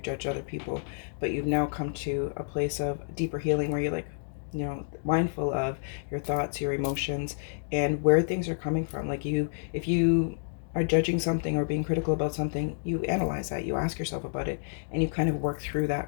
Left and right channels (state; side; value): silent; right; digital silence